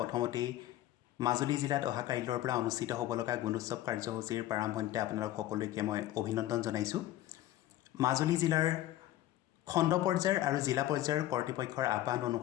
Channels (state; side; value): quieter; right; 14.3 dB